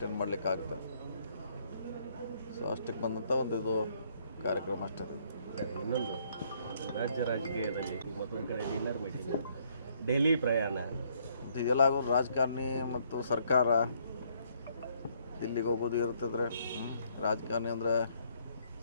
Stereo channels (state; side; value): inverted; both; correlation -0.68